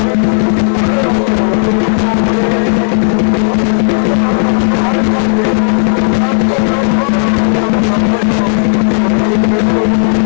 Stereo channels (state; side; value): silent; right; digital silence